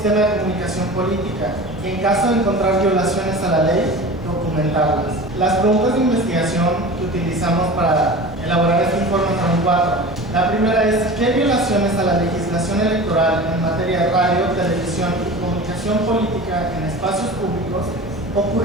de comunicación política y en caso de encontrar violaciones a la ley, documentarlas. Las preguntas de investigación que utilizamos para elaborar este informe son 4. La primera es: ¿qué violaciones a la legislación electoral en materia de radio, televisión y comunicación política en espacios públicos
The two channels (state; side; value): normal; both; correlation 0.35